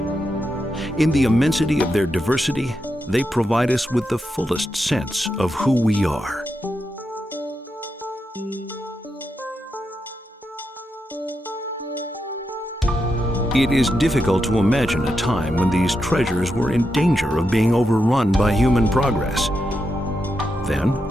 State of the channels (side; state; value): both; normal; correlation 0.86